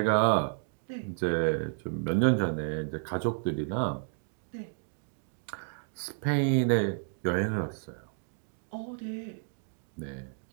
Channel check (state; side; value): silent; left; digital silence